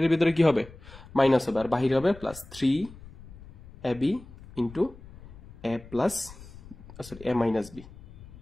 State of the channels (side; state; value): left; noise; rumble, 18 dB below the sound